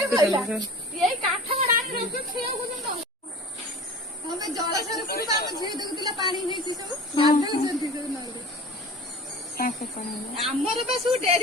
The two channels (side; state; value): both; normal; correlation 0.39